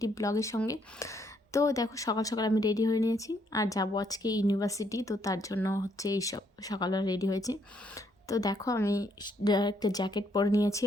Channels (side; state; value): both; normal; correlation 0.71